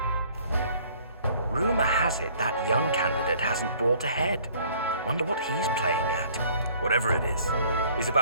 Rumor has it that young candidate hasn't brought ahead. Wonder what he's playing at. Whatever it is, he's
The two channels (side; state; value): both; inverted; correlation -0.56